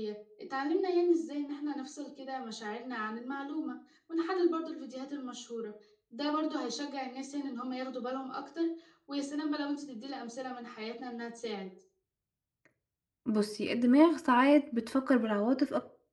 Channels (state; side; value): identical; both; correlation 1.00